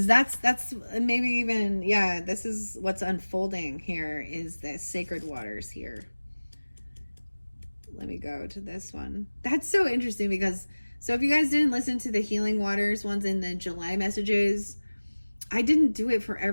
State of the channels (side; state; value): both; inverted; correlation -1.00